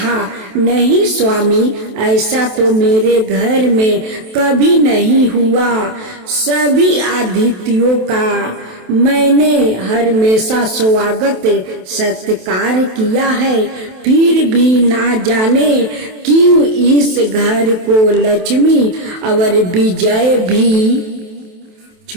नहीं स्वामी, ऐसा तो मेरे घर में कभी नहीं हुआ। सभी अतिथियों का मैंने हमेशा स्वागत सत्कार किया है, फिर भी ना जाने क्यों इस घर को लक्ष्मी और विजय भी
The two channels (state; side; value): late; left; 27 ms